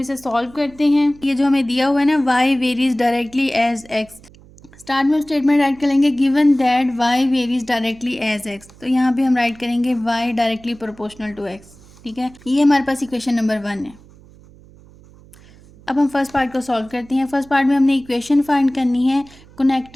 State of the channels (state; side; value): noise; right; hum, 24 dB below the sound